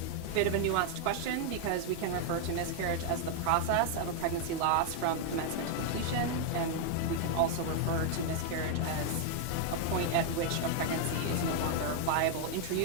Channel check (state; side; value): different; both; correlation 0.00